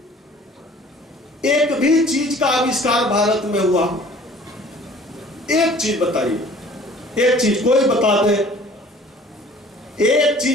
एक भी चीज का आविष्कार भारत में हुआ? एक चीज बताइए, एक चीज कोई बता दे, एक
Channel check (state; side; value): normal; both; correlation 0.51